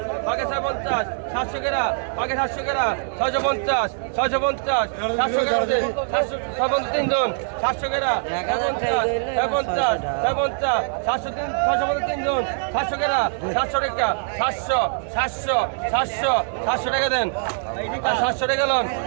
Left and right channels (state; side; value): silent; left; 58 dB below the other